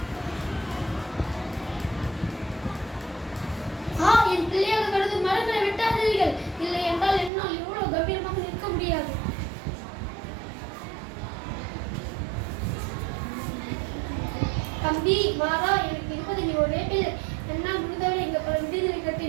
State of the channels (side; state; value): left; drops out; at 7.3 s